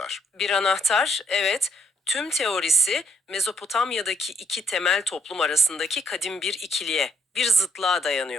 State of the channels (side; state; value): both; normal; correlation 0.71